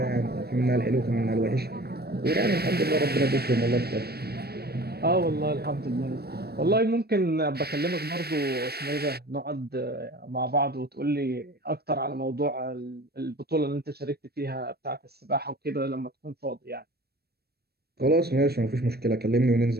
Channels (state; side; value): late; left; 0.46 ms